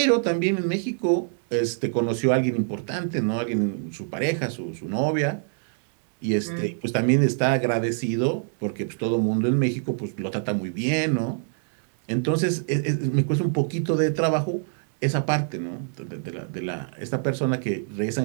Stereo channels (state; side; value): silent; left; digital silence